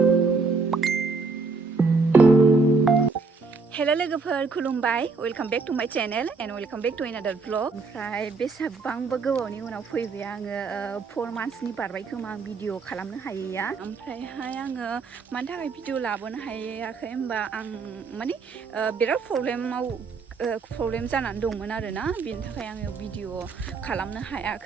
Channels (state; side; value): quieter; left; 4.4 dB